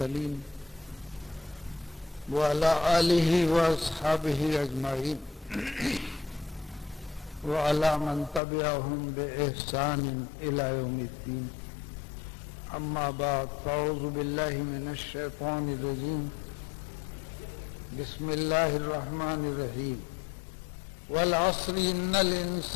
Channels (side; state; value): right; drops out; at 8.4 s